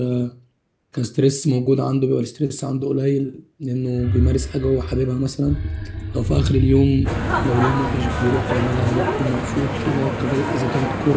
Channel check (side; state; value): both; identical; correlation 1.00